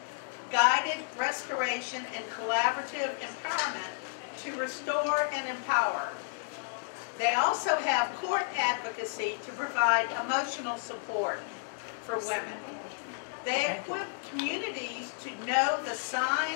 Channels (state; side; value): silent; right; digital silence